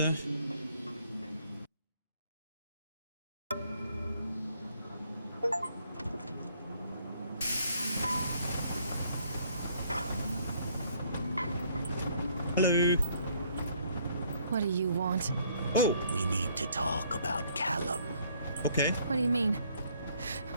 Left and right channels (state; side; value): inverted; both; correlation -0.64